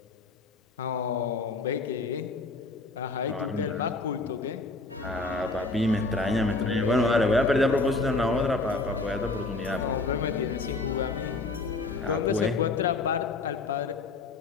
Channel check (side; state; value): right; quieter; 3.4 dB